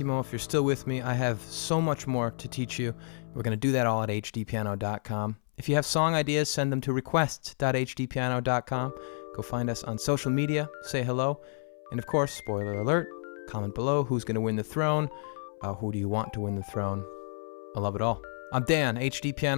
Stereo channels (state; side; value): silent; right; 58 dB below the other